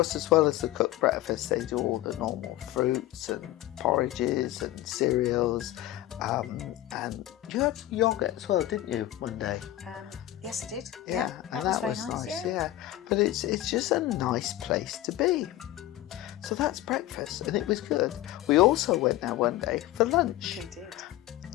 as well as the cooked breakfast, they do all the normal fruits and porridges and cereals. And you had yoghurt as well, didn't you, one day? Yes, I did. Yeah, and that was nice. Yeah, but it's just a nice place to be. So that's breakfast, and it was good. We also went there one day for lunch. We did.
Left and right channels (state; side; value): quieter; right; 14.9 dB